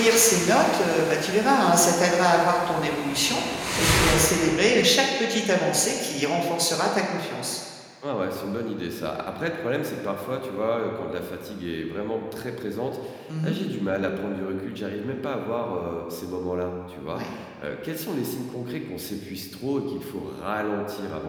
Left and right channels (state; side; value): identical; both; correlation 1.00